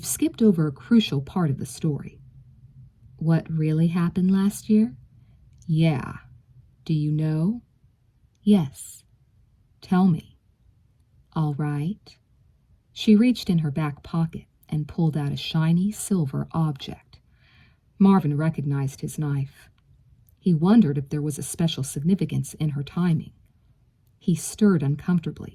skipped over a crucial part of the story." "What really happened last year?" "Yeah. Do you know?" "Yes." "Tell me." "All right." She reached in her back pocket and pulled out a shiny silver object. Marvin recognized his knife. He wondered if there was a special significance in her timing. He stirred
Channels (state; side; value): identical; both; correlation 1.00